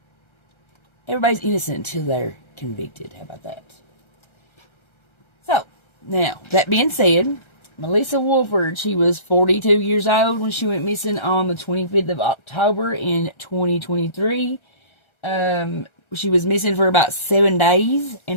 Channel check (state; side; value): late; right; 1.3 ms